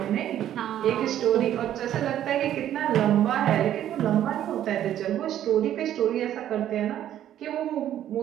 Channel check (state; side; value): quieter; left; 11.4 dB